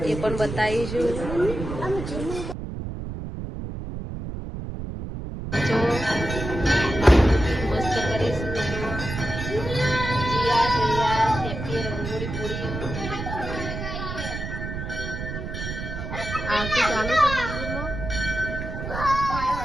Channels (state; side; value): noise; right; rumble, 6 dB below the sound